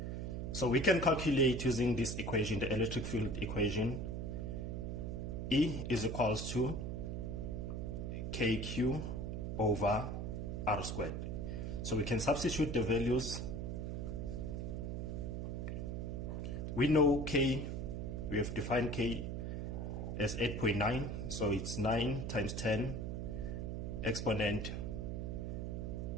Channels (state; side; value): noise; right; hum, 3 dB below the sound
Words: So we can calculate using this equation, the electric field equation. E is equals to KQ over R squared. So we can substitute the values. We know K, we have defined K as 8.9, so it's 9 times 10 exponent